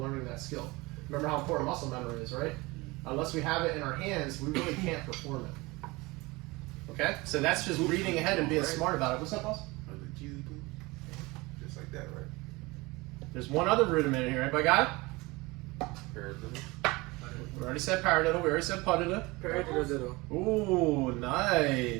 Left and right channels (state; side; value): quieter; left; 23.1 dB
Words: that skill. Remember how important muscle memory is, right? Unless we have it in our hands, we really can't perform it. Okay? So that's just reading ahead and being smart about it. What's up, boss? Just like that, right? There's one other rudiment in here. Everybody got it? Paradiddle. We already said paradiddle. We already said puttida. Paradiddle. Ooh,